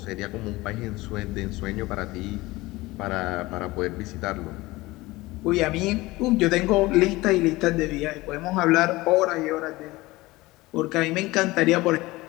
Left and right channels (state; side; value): quieter; right; 20.1 dB